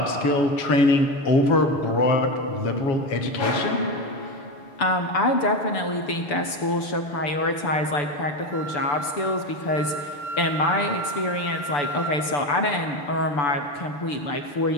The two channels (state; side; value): late; right; 6.9 ms